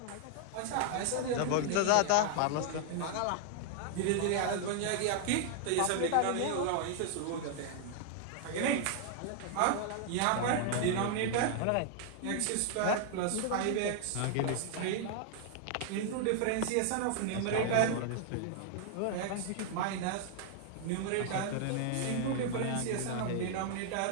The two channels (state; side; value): different; both; correlation 0.00